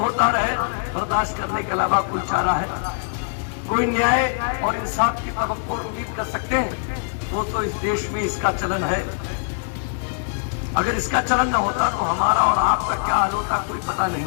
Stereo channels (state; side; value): silent; right; digital silence